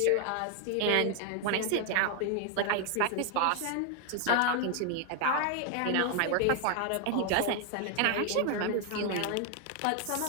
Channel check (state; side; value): different; both; correlation 0.00